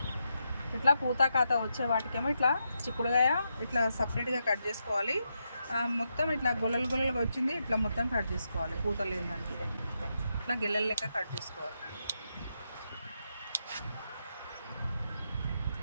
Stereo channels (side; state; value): both; inverted; correlation -0.83